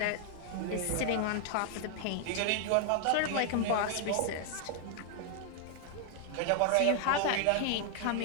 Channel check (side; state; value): both; different; correlation 0.00